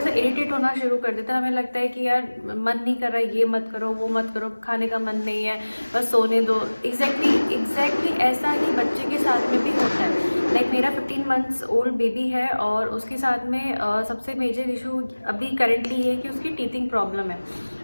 इरिटेट होना शुरू कर देते हैं। हमें लगता है कि यार मन नहीं कर रहा है, ये मत करो, वो मत करो, खाने का मन नहीं है, बस सोने दो। एग्जैक्टली ऐसा ही बच्चे के साथ में भी होता है। मेरा 15 मंथ्स ओल्ड बेबी है और उसके साथ में सबसे मेजर इशू अभी करेंटली ये है कि उसकी टीथिंग प्रॉब्लम है।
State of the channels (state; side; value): inverted; both; correlation -1.00